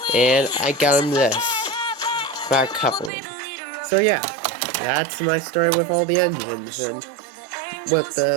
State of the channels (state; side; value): drops out; left; at 3.1 s